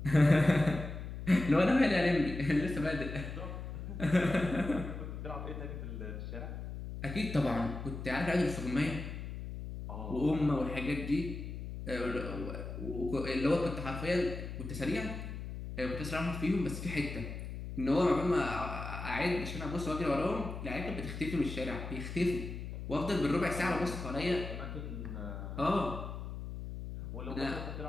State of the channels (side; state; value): left; noise; hum, 7 dB below the sound